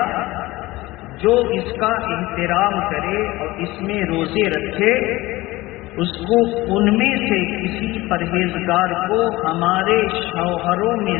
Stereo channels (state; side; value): quieter; right; 19.4 dB